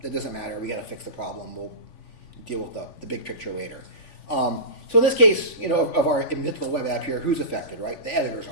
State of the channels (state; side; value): late; right; 3.5 ms